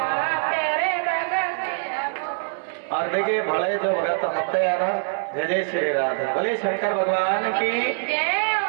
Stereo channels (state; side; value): silent; left; digital silence